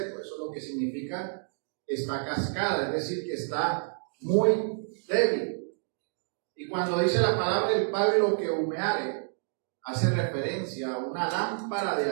Eso es lo que significa está cascada, es decir, que está muy débil. Y cuando dice la palabra el pábilo que humeare, hace referencia a una lámpara de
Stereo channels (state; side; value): silent; left; 58 dB below the other